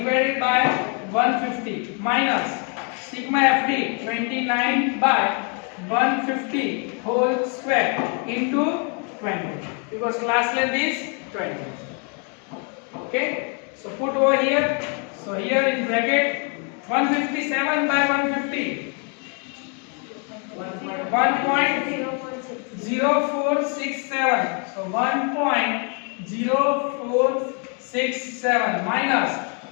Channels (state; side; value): quieter; right; 38.2 dB